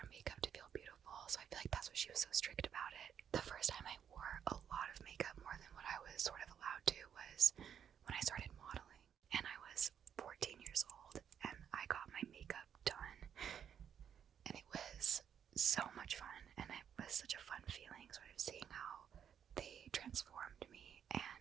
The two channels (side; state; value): left; quieter; 8.5 dB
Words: makeup to feel beautiful, so I feel like that's what she was so strict about it. The first time I wore a lot of makeup, more than what I was sort of allowed to, was when I started modeling, and I was 14 years old, and I got my makeup done, and it was so much fun, and it was such a fun feeling, sort of seeing how they transformed me,